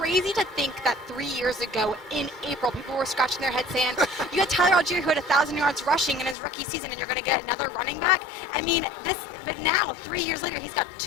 to think that 3 years ago in April, people were scratching their heads saying, you had Tyler Algier who had 1,000 yards rushing in his rookie season, and you're going to get another running back? I mean, but now, 3 years later, he's got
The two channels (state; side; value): drops out; right; at 6.4 s